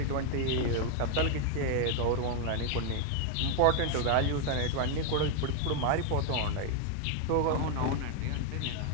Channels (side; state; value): both; different; correlation 0.00